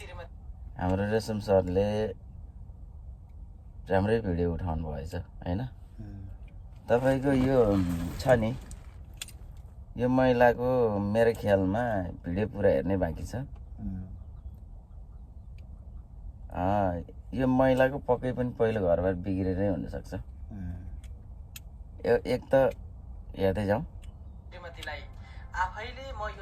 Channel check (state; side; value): identical; both; correlation 1.00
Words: हाम्रो रेशम सरले राम्रै भिडियो उठाउनु भएछ हैन तपाईको यो छ नि यो महिलाको मेरो ख्यालमा भिडियो पुरा हेर्ने बाँकी छ यो महिलाको पक्कै पनि पहिलो घरबार बिग्रेरै हुनसक्छ एक त हेर्दै जाउँ श्रीमतीलाई आफैले म